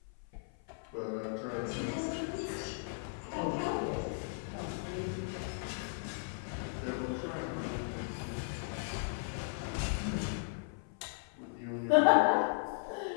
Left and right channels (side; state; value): right; silent; 53 dB below the other